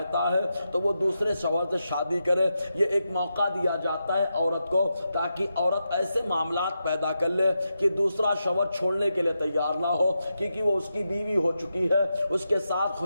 ہے تو وہ دوسرے شوہر سے شادی کرے۔ یہ ایک موقع دیا جاتا ہے عورت کو تاکہ عورت ایسے معاملات پیدا کر لے کہ دوسرا شوہر چھوڑنے کے لیے تیار نہ ہو، کیونکہ وہ اس کی بیوی ہو چکی ہے، اس کے ساتھ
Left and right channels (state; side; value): inverted; both; correlation -0.87